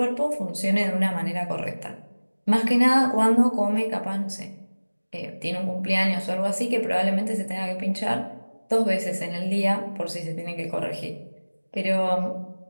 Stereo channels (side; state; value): both; inverted; correlation -1.00